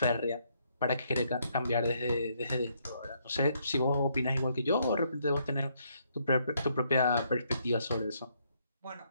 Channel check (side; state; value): both; inverted; correlation -0.72